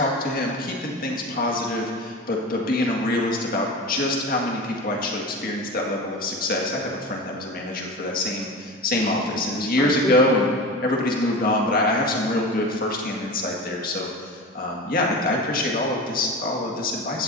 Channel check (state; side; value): normal; both; correlation 0.29